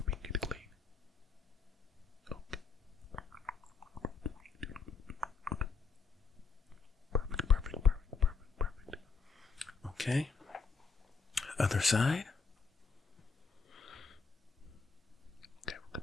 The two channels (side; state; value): right; quieter; 5.0 dB